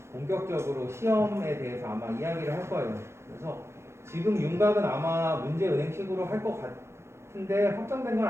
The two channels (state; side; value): late; left; 0.13 ms